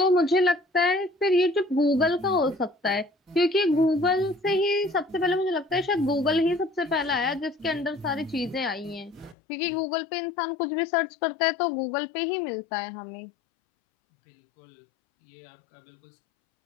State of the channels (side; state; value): right; drops out; at 9.3 s